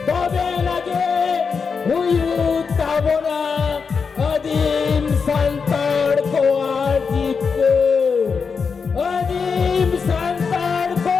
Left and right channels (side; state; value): right; quieter; 5.5 dB